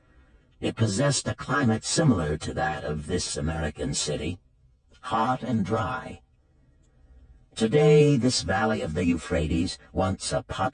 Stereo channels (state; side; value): identical; both; correlation 1.00